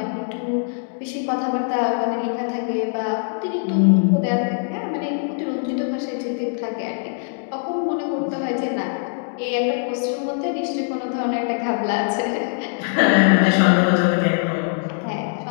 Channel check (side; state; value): right; silent; 64 dB below the other